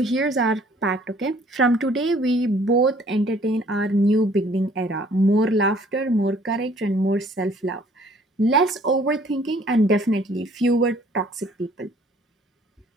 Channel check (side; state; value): both; normal; correlation 0.58